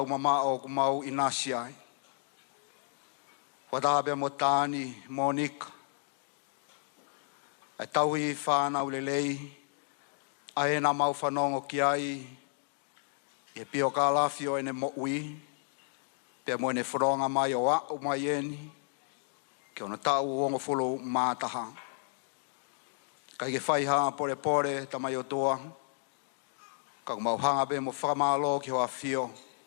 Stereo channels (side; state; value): right; silent; digital silence